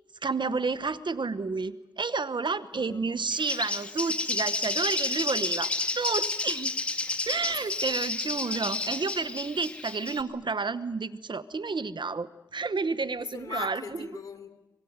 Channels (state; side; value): normal; both; correlation 0.17